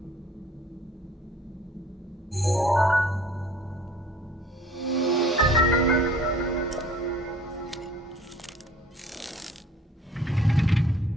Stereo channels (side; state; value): both; normal; correlation 0.53